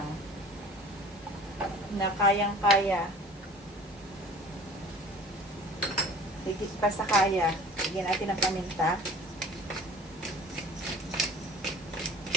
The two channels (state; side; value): normal; both; correlation 0.45